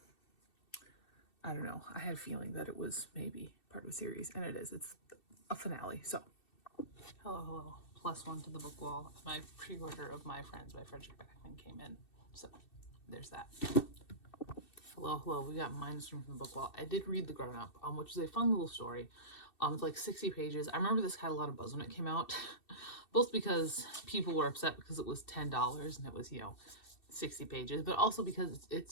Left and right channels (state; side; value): late; right; 2.7 ms